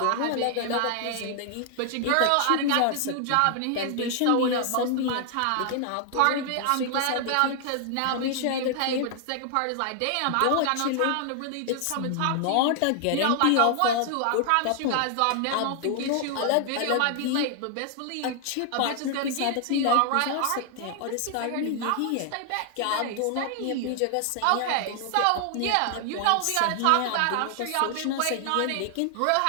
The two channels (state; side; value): different; both; correlation 0.00